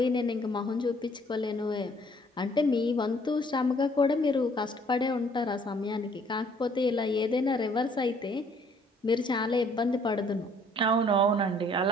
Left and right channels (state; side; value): normal; both; correlation 0.61